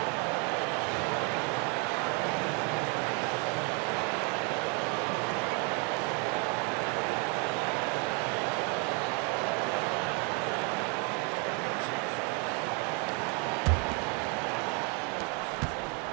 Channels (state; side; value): quieter; left; 30.9 dB